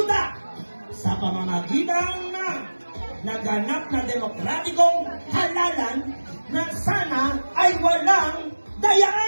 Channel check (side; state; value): both; inverted; correlation -1.00